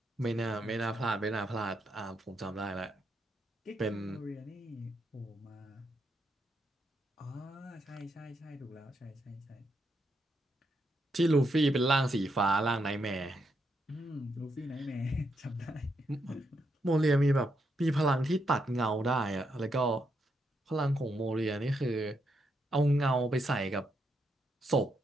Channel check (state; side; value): normal; both; correlation 0.80